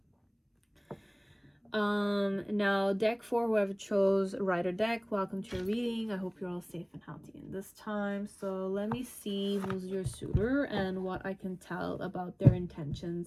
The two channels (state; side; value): identical; both; correlation 1.00